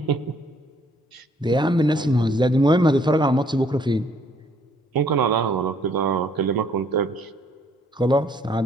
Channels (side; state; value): both; normal; correlation 0.64